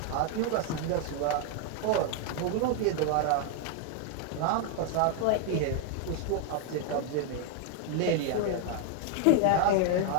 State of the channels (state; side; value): different; both; correlation 0.00